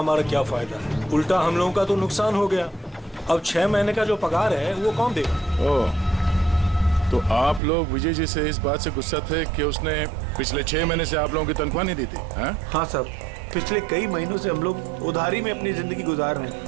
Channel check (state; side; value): drops out; left; at 7.6 s